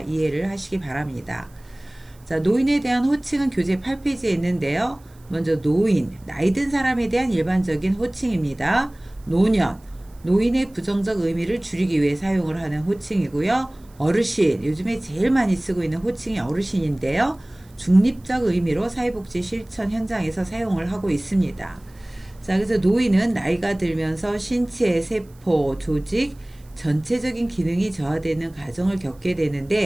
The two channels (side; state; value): right; noise; hiss, 30 dB below the sound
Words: 하시기 바랍니다. 자, 노인에 대한 호칭은 교재 8페이지에 있는데요. 먼저 노인, 나이 든 사람에 대한 일반적인 호칭입니다. 노년, 노인의 부정적 의미를 줄이기 위해 사용을 하는 호칭이고요. 어르신, 요즘에 제일 많이 쓰고 있는 호칭이 어르신인데요. 중립적 의미로 사회복지 실천 현장에서 사용을 하고 있습니다. 자, 그래서 노인은 나이가 들면서 신체, 세포, 조직, 전체적인 기능이 저하되는 과정을 겪게